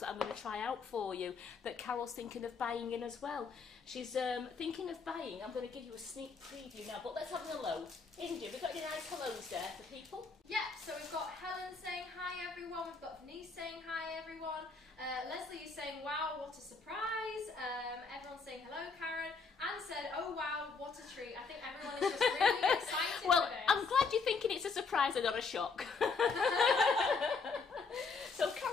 that I'm going to try out for you that Carol's thinking of buying in as well. She's thinking of buying. I'm going to give you a sneak preview now, but let's have a hello. Indra, we've got any nice hellos there for people? Yeah, so we've got Helen saying hi everyone, we've got Denise saying hi everyone, Leslie is saying wow, what a surprise, everyone's saying hello Karen, Anne said oh wow, what a treat. I think everyone is just really excited well, for this. I'm glad you're thinking it's a surprise and not a shock. So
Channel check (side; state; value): right; quieter; 4.7 dB